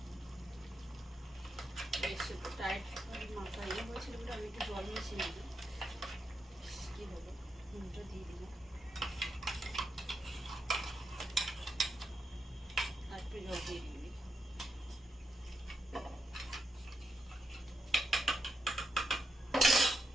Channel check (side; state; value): both; normal; correlation 0.84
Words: টাইট মাথা ইয়ে হয়েছিল বলে আমি একটু জল মিশিয়ে নিই। কী হলো, নুনটা দিয়ে দিলাম, আর একটু জল দিয়ে দিই।